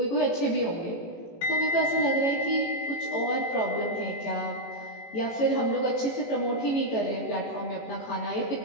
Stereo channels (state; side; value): late; right; 18 ms